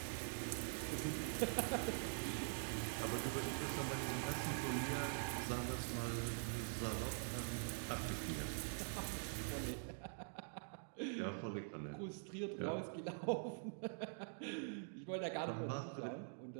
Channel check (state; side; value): silent; left; digital silence